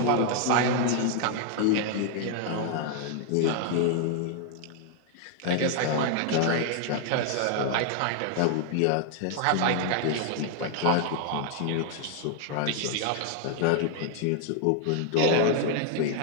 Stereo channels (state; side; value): different; both; correlation 0.00